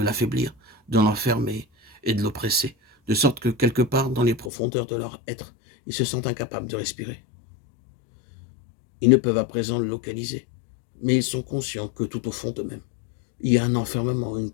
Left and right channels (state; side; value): drops out; right; at 4.5 s